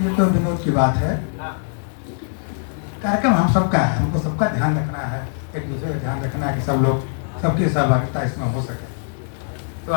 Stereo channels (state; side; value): silent; right; 58 dB below the other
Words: ये तो विनोद की बात है। कार्यक्रम हम सबका है, हमको सबका ध्यान रखना है, एक दूसरे का ध्यान रखना है कि सब लोग, सबकी सहभागिता इसमें हो सके। तो